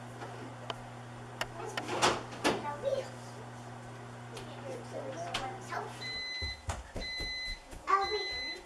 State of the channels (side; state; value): both; identical; correlation 1.00